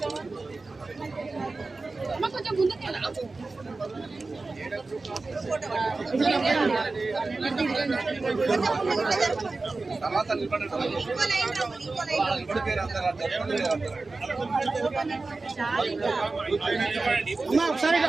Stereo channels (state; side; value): quieter; left; 3.6 dB